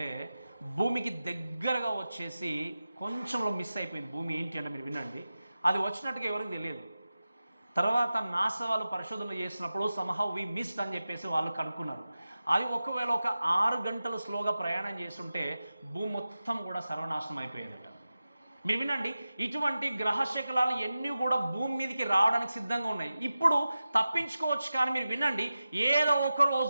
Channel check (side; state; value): both; inverted; correlation -0.94